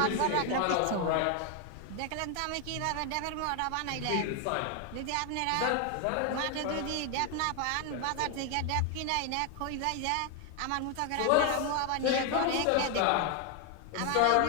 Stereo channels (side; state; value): both; different; correlation 0.01